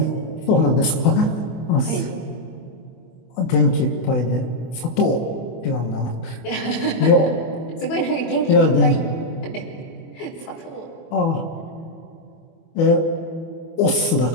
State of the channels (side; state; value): right; late; 24 ms